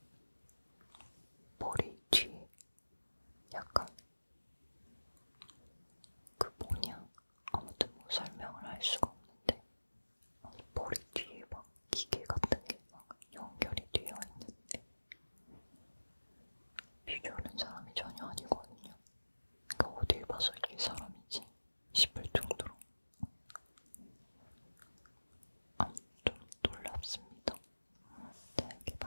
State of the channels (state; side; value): inverted; both; correlation -1.00